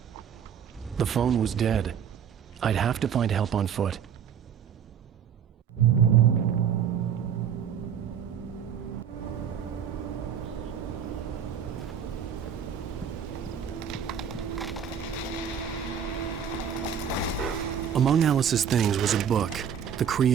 The phone was dead. I'd have to find help on foot. Among Alice's things was a book, The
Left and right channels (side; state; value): left; quieter; 8.0 dB